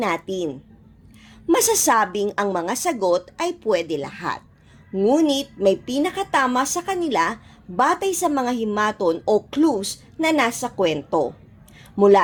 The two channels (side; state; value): both; identical; correlation 1.00